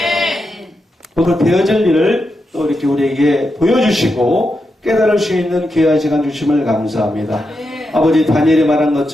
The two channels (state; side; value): normal; both; correlation 0.86